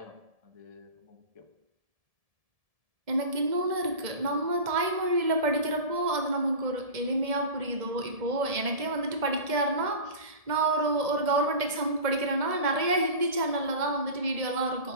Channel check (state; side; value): late; left; 1.7 ms